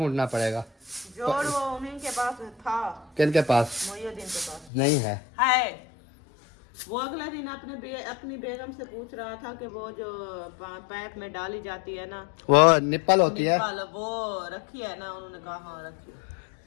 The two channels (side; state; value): right; drops out; at 4.7 s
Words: पड़ेगा। जोड़ वो उन्हीं के पास था। किनके पास? मोइनुद्दीन के पास नहीं है। वो अगला दिन अपनी बेगम से पूछ रहा था कि वो जो पैप में डाली जाती है ना, वो निप्पल होती है, वो रखी है ना? उन्होंने कहा हाँ रखी है।